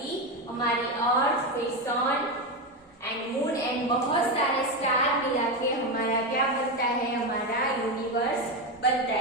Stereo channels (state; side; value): normal; both; correlation 0.12